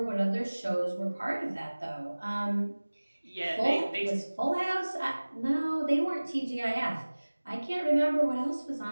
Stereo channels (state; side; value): inverted; both; correlation -1.00